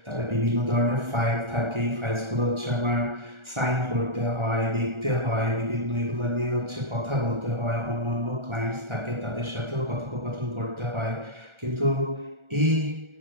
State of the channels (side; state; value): left; late; 1.4 ms